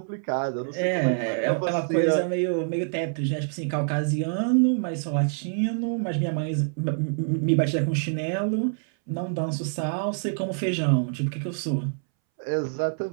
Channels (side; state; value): left; silent; 61 dB below the other